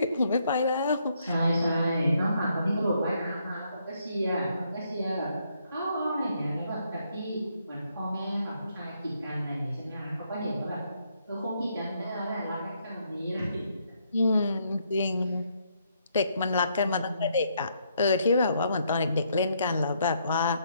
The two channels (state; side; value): inverted; both; correlation -0.73